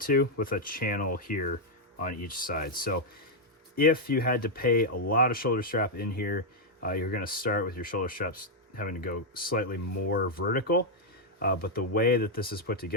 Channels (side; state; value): both; normal; correlation -0.02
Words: to, with a channel here on each side. So if you had to pay a lot of shoulder strap in here, you're gonna start with your shoulder straps having to go slightly more vertical. But the way that this is put